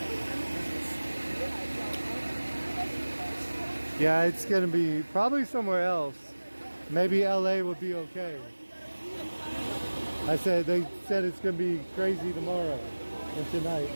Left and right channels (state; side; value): inverted; both; correlation -1.00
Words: Yeah, it's going to be probably somewhere else. Maybe LA would be okay. They said it's going to be crazy tomorrow and tonight.